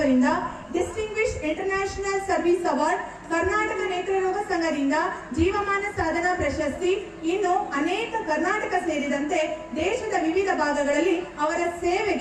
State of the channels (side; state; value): both; identical; correlation 1.00